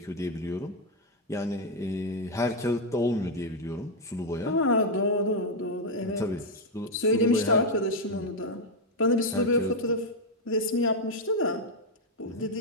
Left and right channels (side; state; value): both; normal; correlation 0.01